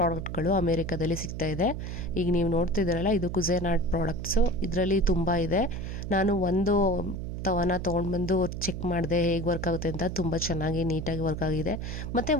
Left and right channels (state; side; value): noise; right; hum, 6 dB below the sound